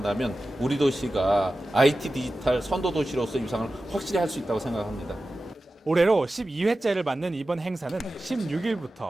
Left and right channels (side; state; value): both; normal; correlation 0.94